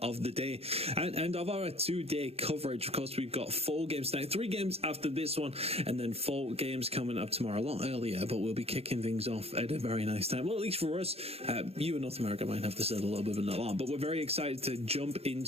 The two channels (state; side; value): late; left; 0.29 ms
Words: of the day and of our 2-day coverage. Of course, we've got 4 games tonight, 3 games after this one, and then 4 games coming up tomorrow, a lot earlier, but we'll be kicking things off at a very nice time. Well, at least for us, you in North America might have to set a little bit of an alarm, but we're very excited to jump